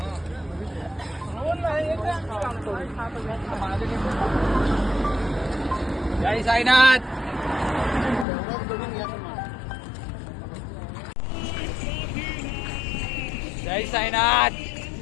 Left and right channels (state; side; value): drops out; right; at 8.2 s